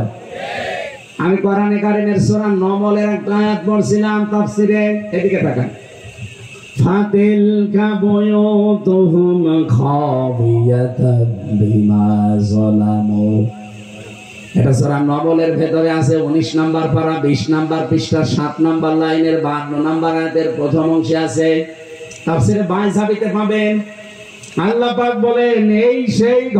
আমি কোরআনে কারিমের সূরা নমলের একটা আয়াত পড়ছিলাম তাফসীরে, এদিকে তাকান। ফাতিলকা বুয়ুতুহুম খাবিয়াতান বিমা যালামু। এটা সূরা নমলের ভেতরে আছে 19 নাম্বার পারা 20 নাম্বার পৃষ্ঠা 7 নাম্বার লাইনের 52 নাম্বার আয়াতের প্রথম অংশে আছে। তাফসীরে 22 ঝাবিতে পাবেন। আল্লাহ পাক বলেন এই সেই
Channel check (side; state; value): both; identical; correlation 1.00